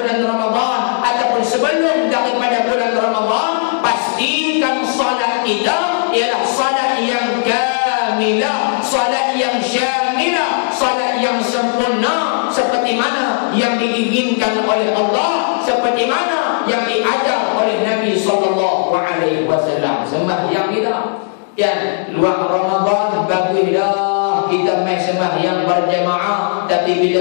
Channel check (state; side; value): silent; right; digital silence